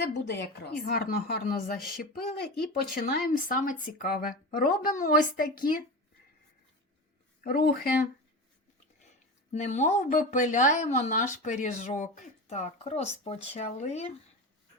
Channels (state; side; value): normal; both; correlation 0.26